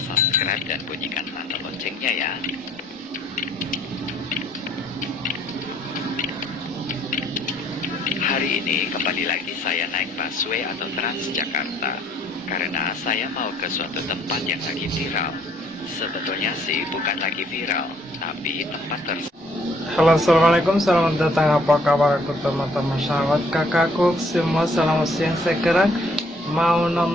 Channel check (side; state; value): both; normal; correlation 0.64